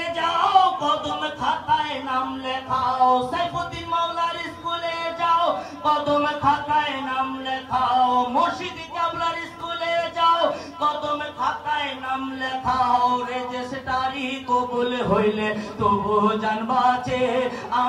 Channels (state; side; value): identical; both; correlation 1.00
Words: যাও কদম খাতায় নাম লেখাও সাইফুদ্দিন মাওলার স্কুলে যাও কদম খাতায় নাম লেখাও মুর্শিদ কেবলার স্কুলে যাও কদম খাতায় নাম লেখাও রেজিস্ট্রারি কবুল হইলে তবু জানবাছে